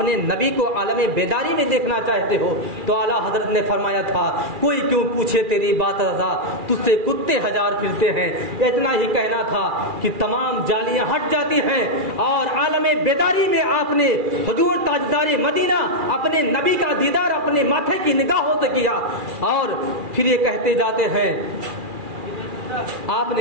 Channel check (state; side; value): late; left; 2.4 ms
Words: نبی کو عالم بیداری میں دیکھنا چاہتے ہو؟ تو اعلیٰ حضرت نے فرمایا تھا کوئی کیوں پوچھے تیری بات رضا، تجھ سے کتے ہزار پھرتے ہیں۔ اتنا ہی کہنا تھا کہ تمام جالیاں ہٹ جاتی ہیں اور عالم بیداری میں آپ نے حضور تاجدار مدینہ اپنے نبی کا دیدار اپنے ماتھے کی نگاہوں سے کیا، اور پھر یہ کہتے جاتے ہیں، آپ